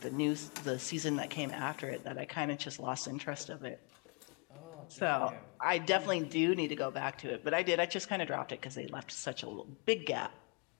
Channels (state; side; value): quieter; right; 35.0 dB